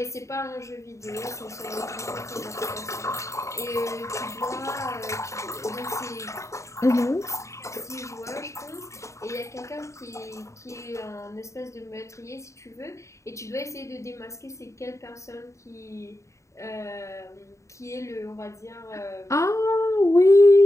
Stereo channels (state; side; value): late; right; 0.14 ms